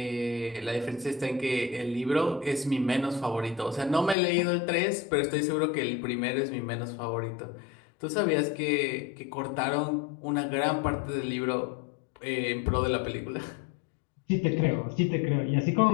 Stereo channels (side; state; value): right; drops out; at 4.2 s